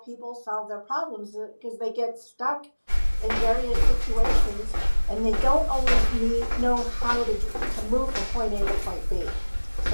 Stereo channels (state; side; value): inverted; both; correlation -1.00